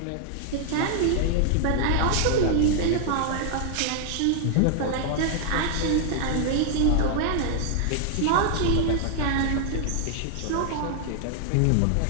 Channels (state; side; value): different; both; correlation 0.00